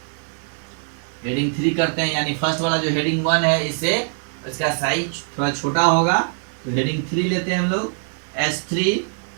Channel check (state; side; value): silent; left; 56 dB below the other